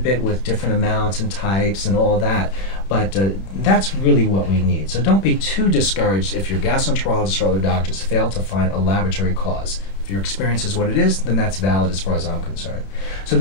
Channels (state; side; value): late; right; 31 ms